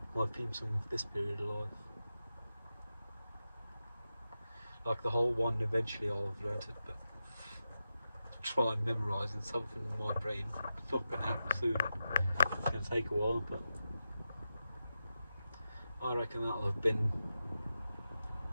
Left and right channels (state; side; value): inverted; both; correlation -0.90